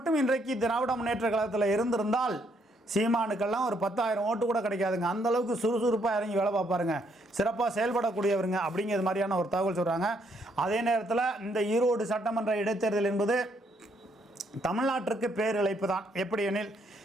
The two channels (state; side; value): normal; both; correlation 0.72